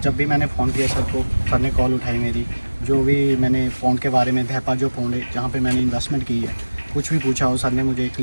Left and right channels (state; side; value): inverted; both; correlation -1.00